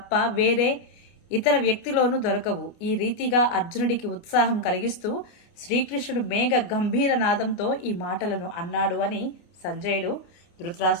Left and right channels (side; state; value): right; late; 29 ms